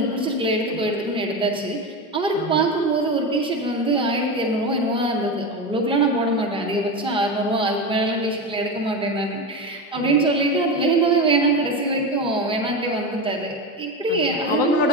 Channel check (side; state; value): both; normal; correlation 0.20